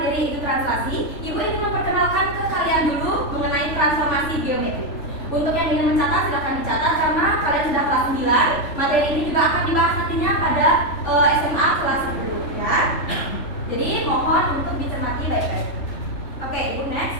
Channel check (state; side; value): late; right; 3.5 ms